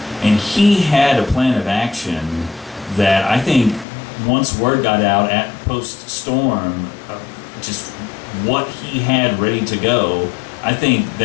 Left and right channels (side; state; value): right; drops out; at 3.9 s